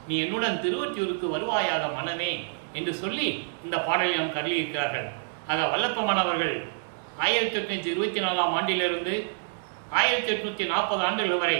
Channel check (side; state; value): left; silent; digital silence